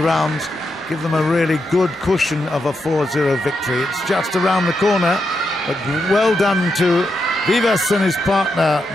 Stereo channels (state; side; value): normal; both; correlation 0.84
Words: give them a really good cushion of a 4-0 victory. It's just around the corner, but well done to Vivas and his partner,